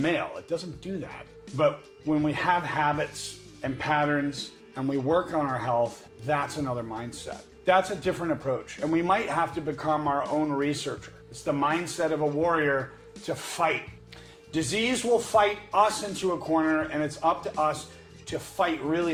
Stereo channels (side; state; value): both; identical; correlation 1.00